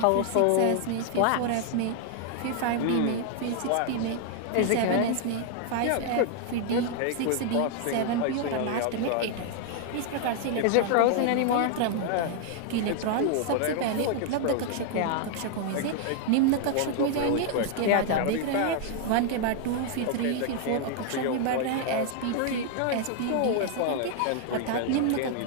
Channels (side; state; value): both; different; correlation 0.00